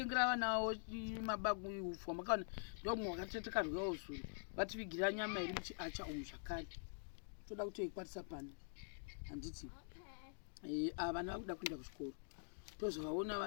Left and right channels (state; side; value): silent; right; digital silence